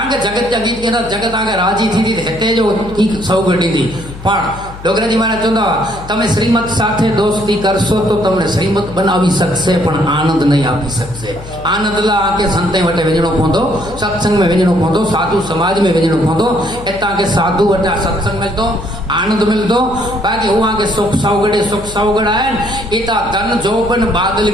के जगत जा गीत गेना जगत आगे राजी थी हेते जो की सौगंधी थी पण डोगराजी महाराज चंदा तमे श्रीमत साथे दोस्ती करशो तो तमने श्रीमत बनावी सकशे पण आनंद नहीं आपी सकशे आनंद ला आके संते वटे वेजणो पोंदो सत्संग में वेजणो पोंदो साधु समाज में वेजणो पोंदो एता के साधु वटे सत्संग मिलतो आनंद मिलतो बाकी हुआ के सुख सौगड़ आए इता धन जोबन बादल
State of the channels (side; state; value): left; noise; hum, 14 dB below the sound